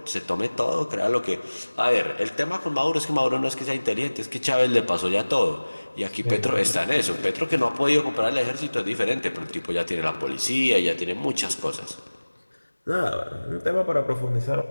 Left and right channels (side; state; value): both; inverted; correlation -1.00